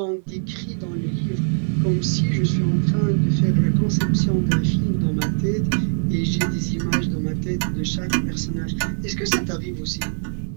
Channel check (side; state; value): left; silent; 62 dB below the other